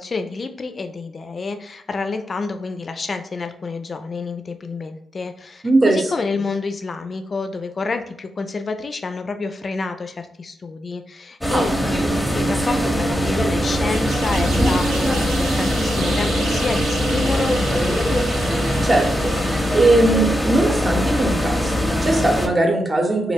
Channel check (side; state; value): both; normal; correlation 0.86